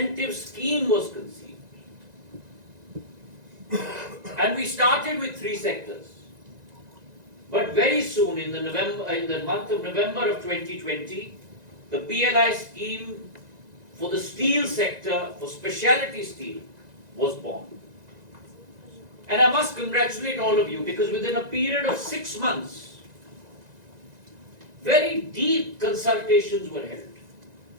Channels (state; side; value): late; left; 1.9 ms